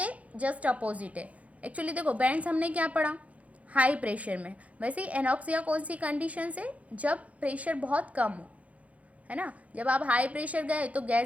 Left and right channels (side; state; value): left; late; 0.067 ms